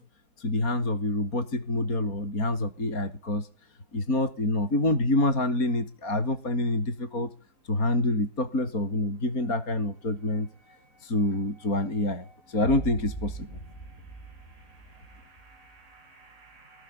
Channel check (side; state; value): right; late; 4.2 ms